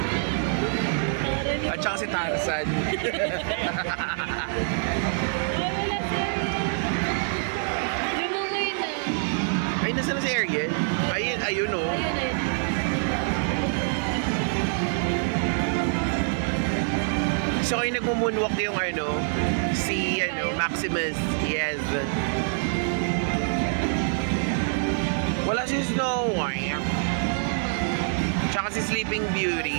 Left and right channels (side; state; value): left; silent; 61 dB below the other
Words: At saka si Tarzan. Ay, wala siya. Lumungoy na. Ay, nasa na si Ariel? Ayun, ayun o. Ayun, ayun. So kayo nagmumunwalk yung si Maximus. Yes. Wala si Snow White. Tsaka si Sleeping